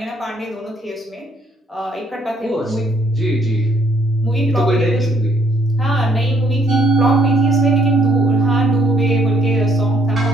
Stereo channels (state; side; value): normal; both; correlation 0.67